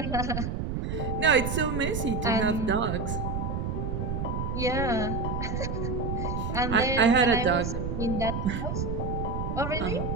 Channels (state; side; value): noise; right; rumble, 2 dB below the sound